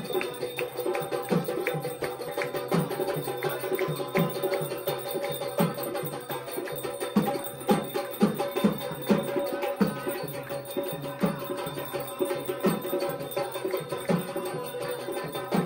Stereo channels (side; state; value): both; identical; correlation 1.00